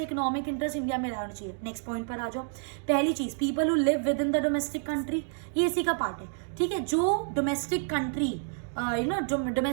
इकोनॉमिक इंटरेस्ट इंडिया में रहना चाहिए। नेक्स्ट पॉइंट पर आ जाओ। पहली चीज, people who live with in the domestic country, ये इसी का पार्ट है। ठीक है, जो डोमेस्टिक कंट्री, जो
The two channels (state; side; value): silent; left; 59 dB below the other